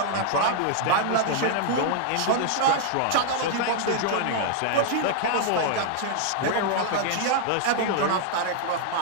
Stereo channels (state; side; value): different; both; correlation -0.01